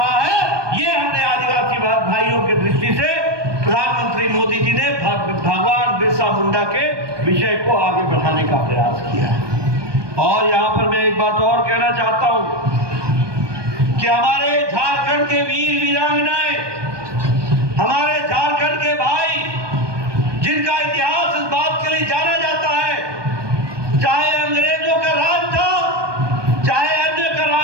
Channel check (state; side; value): late; left; 1.2 ms